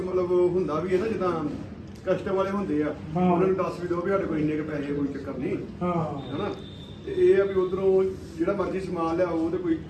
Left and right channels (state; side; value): identical; both; correlation 1.00